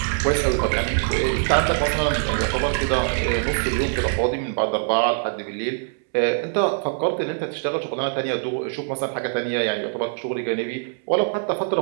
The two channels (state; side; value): silent; left; 63 dB below the other